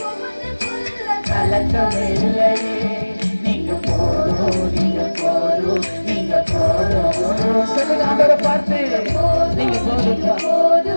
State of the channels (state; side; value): inverted; both; correlation -1.00